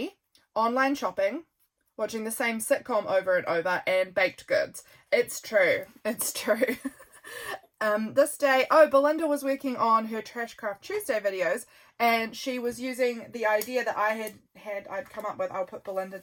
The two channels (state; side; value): identical; both; correlation 1.00